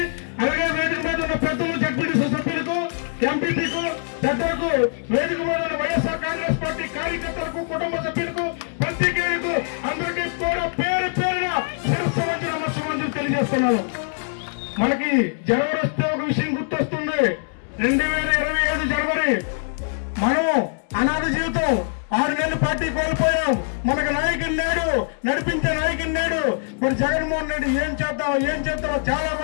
అలాగే వేదిక మీద ఉన్న పెద్దలు, జడ్పీటీసీ సభ్యులకు, ఎంపీపీకు, పెద్దలకు, వేదిక మీద ఉన్న వైఎస్ఆర్ కాంగ్రెస్ పార్టీ కార్యకర్తలకు, కుటుంబ సభ్యులకు, పత్రికేయులకు అందరికీ కూడా పేరు పేరున శిరస్సు వంచి నమస్కారం తెలియజేస్తున్నాను. మనకి జనవరి వస్తే ఒక విషయం గుర్తొస్తుంది. 2025 జనవరి మనం అనాథ జీవితం 6 నెలలు పార్టీ కోల్పోయాం. మనకు నాయకుని నేడు, నడిపించే నాయకుని నేడు. మరి జగన్మోహన్ రెడ్డి ఏం చేద్దాం చాలా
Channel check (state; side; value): silent; right; digital silence